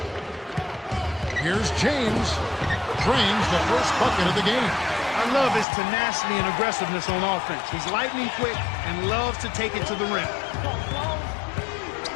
Here's James. Drains the first bucket of the game. I love his tenacity and aggressiveness on offense. He's lightning quick and loves to take it to the rim.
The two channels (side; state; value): right; drops out; at 5.7 s